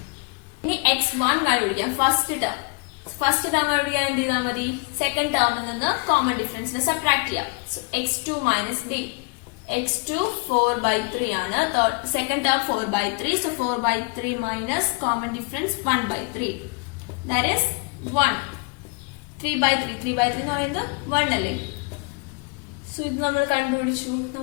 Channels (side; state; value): right; quieter; 31.3 dB